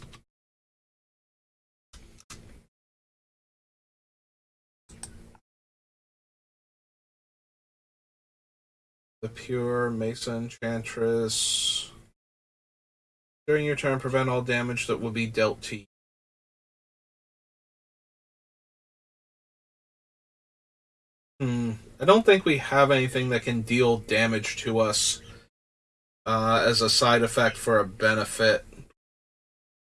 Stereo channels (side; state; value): both; identical; correlation 1.00